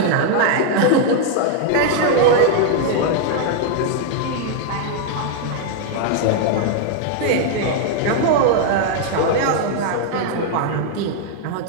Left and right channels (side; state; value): both; different; correlation 0.00